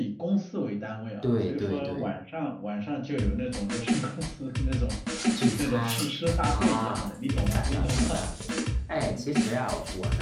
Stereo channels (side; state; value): both; identical; correlation 1.00